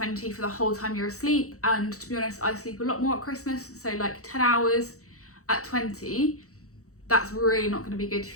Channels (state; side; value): late; right; 0.65 ms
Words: for the whole time you're asleep, and to be honest, I sleep a lot more at Christmas, so like 10 hours at 20, that's really not going to be good